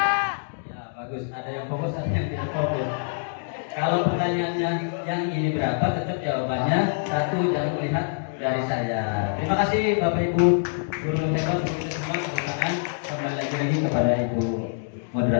bagus, ada yang fokus, ada yang tidak fokus. Kalau pertanyaannya yang ini berapa, tetap jawabannya 1, jangan melihat dari saya. Terima kasih Bapak Ibu guru hebat untuk semua kebersamaan. Kembali lagi kepada Ibu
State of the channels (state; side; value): silent; right; digital silence